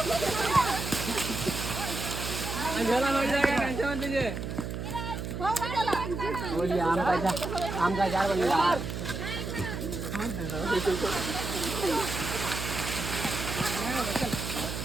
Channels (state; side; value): noise; right; hum, 5 dB below the sound